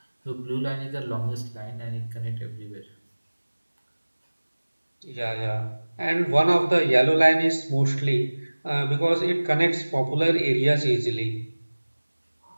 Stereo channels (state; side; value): inverted; both; correlation -1.00